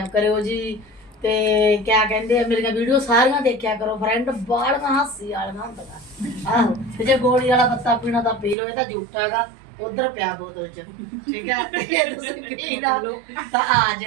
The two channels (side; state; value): left; drops out; at 8.6 s